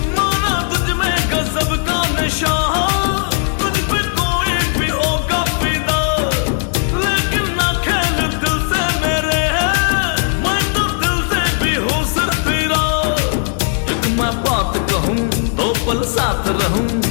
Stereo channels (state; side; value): silent; right; 62 dB below the other